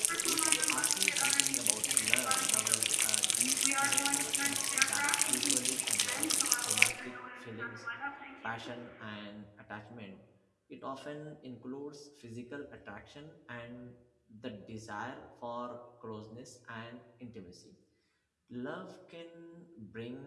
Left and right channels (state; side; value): identical; both; correlation 1.00